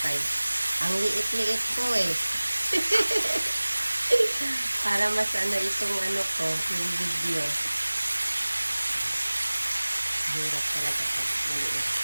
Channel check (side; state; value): both; inverted; correlation -1.00